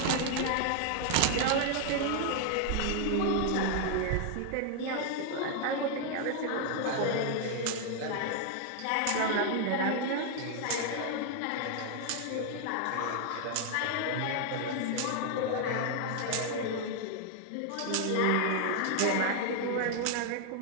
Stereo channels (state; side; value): different; both; correlation 0.00